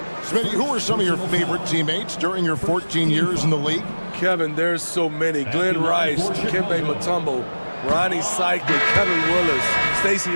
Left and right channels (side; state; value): both; inverted; correlation -1.00